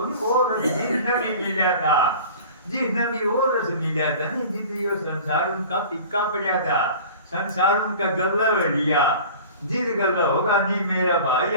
जिसने भी मिला था जिसने भी वो रस मिला था नहीं जिसने ये संसार उनका पिक्का पड़ा था संसार उनका गल्ला लिया जिस गल्ला होगा नहीं मेरा भाई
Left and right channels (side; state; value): both; inverted; correlation -0.41